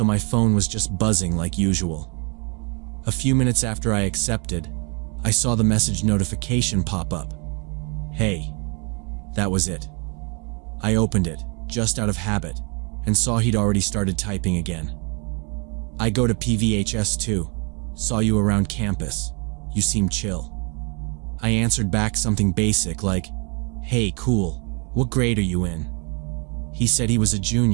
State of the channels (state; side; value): quieter; left; 33.4 dB